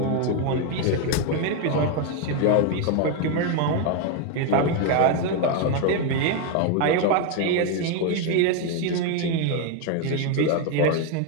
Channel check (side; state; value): both; different; correlation 0.01